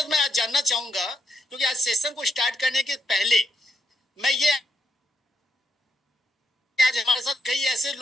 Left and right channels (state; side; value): normal; both; correlation 0.80